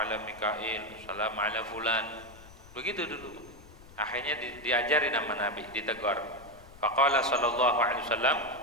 Mikail, assalamu ala fulan. Begitu dulu. Akhirnya diajari nama Nabi, ditegur. Faqala sallallahu alaihi wasallam,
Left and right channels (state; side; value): noise; left; rumble, 21 dB below the sound